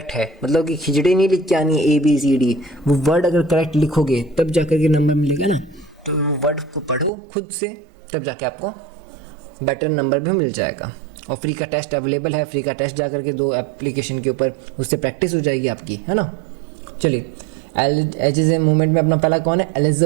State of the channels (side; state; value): left; drops out; at 7.1 s